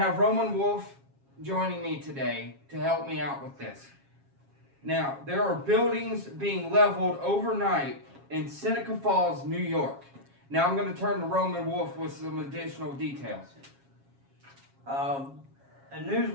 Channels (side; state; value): left; late; 7.3 ms